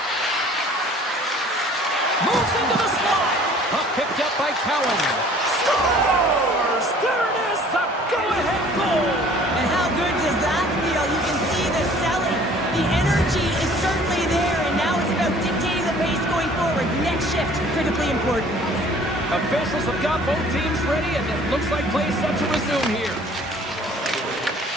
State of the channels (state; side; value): normal; both; correlation 0.52